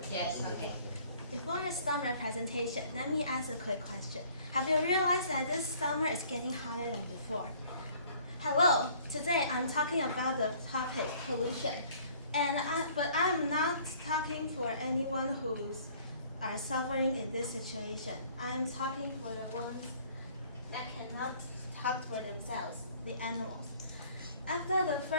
Yes, okay. Before I start my presentation, let me ask a quick question. Have you realized that this summer is getting hotter than before? Hello, today I'm talking about the topic pollution. But I'm not talking for anyone who's are suffering in this situation. I'm talking for the ones that cannot talk for themselves, the animals. After the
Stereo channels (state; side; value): inverted; both; correlation -0.56